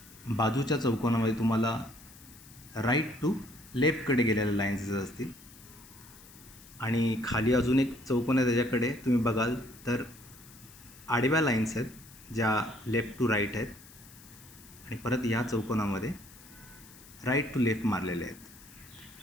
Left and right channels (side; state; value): left; noise; hiss, 21 dB below the sound